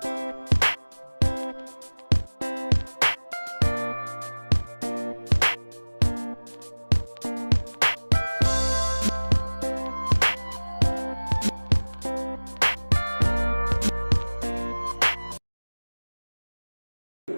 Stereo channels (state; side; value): inverted; both; correlation -1.00